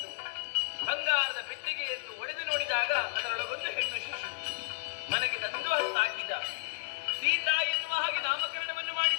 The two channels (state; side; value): quieter; right; 35.9 dB